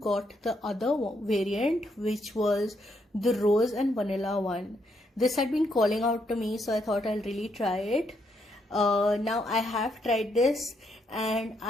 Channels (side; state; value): both; normal; correlation 0.76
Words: the other variant, which was the rose and vanilla one. This had been calling out to me, so I thought I'll really try it. Now I have tried this and